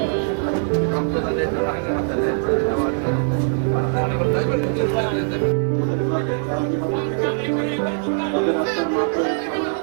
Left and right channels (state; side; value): silent; left; digital silence